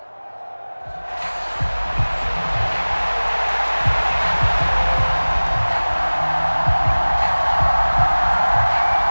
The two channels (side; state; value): both; inverted; correlation -1.00